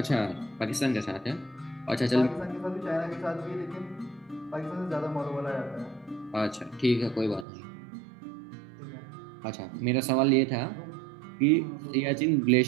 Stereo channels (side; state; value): left; drops out; at 7.5 s